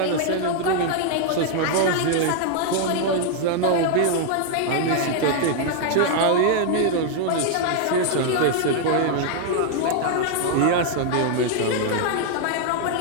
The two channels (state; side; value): different; both; correlation 0.00